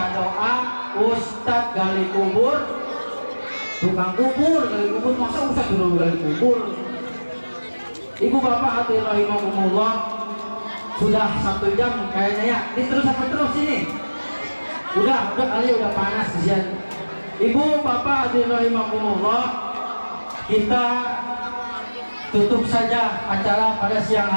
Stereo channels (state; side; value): inverted; both; correlation -1.00